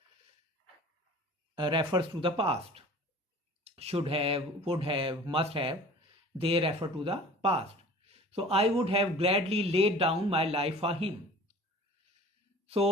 refers to the past. Should have, would have, must have, they refer to the past. So I would have gladly laid down my life for him.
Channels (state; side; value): normal; both; correlation 0.44